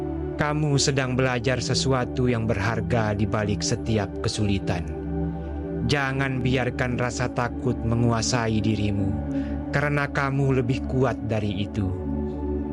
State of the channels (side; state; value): both; identical; correlation 1.00